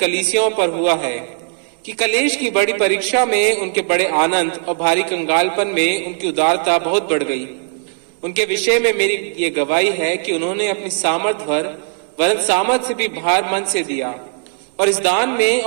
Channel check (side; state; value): left; silent; 67 dB below the other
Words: पर हुआ है कि कलेश की बड़ी परीक्षा में उनके बड़े आनंद और भारी कंगालपन में उनकी उदारता बहुत बढ़ गई। उनके विषय में मेरी ये गवाही है कि उन्होंने अपनी सामर्थ भर वरन सामर्थ से भी भार मन से दिया और इस दान में